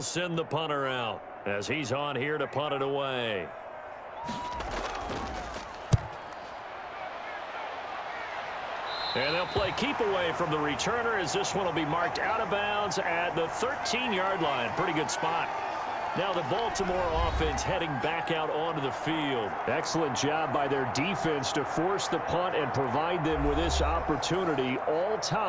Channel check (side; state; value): both; identical; correlation 1.00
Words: send the punter out as he's on here to punt it away. And they'll play keep away from the returner as this one will be marked out of bounds at the 13-yard line. Pretty good spot. Now the Baltimore offense heading back out onto the field. Excellent job by their defense to force the punt and provide them with this opportunity, all